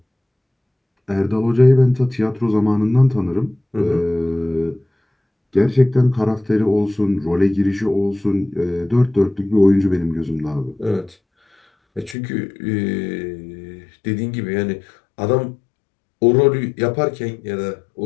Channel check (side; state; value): right; drops out; at 12.2 s